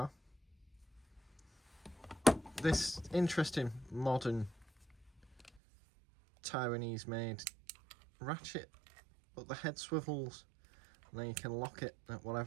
This interesting modern Taiwanese made ratchet, but the head swivels and then you can lock it at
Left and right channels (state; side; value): drops out; left; at 5.6 s